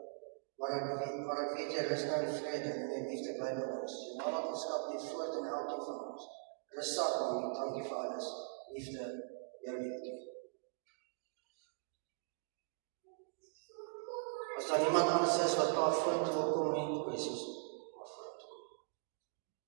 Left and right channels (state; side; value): silent; left; digital silence